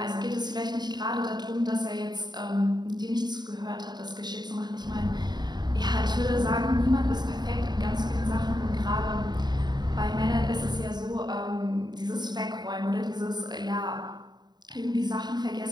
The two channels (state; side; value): late; left; 0.20 ms